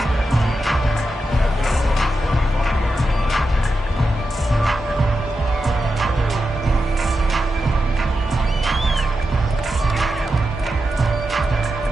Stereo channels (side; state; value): both; normal; correlation 0.88